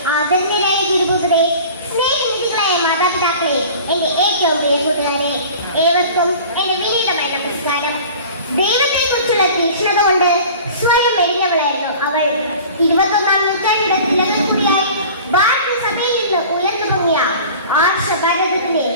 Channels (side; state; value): both; inverted; correlation -0.42